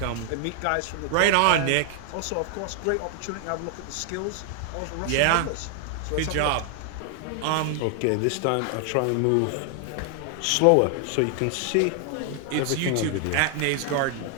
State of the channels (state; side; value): different; both; correlation 0.00